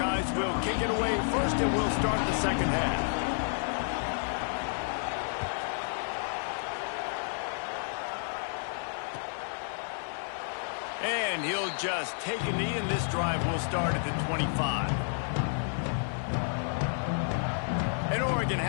will kick it away first, and we'll start the second half. And he'll just take a knee, and this drive will start at the 25. And Oregon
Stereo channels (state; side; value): silent; right; 57 dB below the other